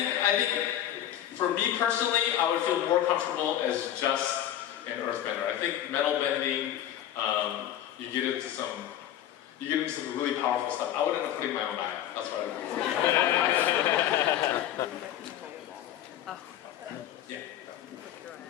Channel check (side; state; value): right; quieter; 11.5 dB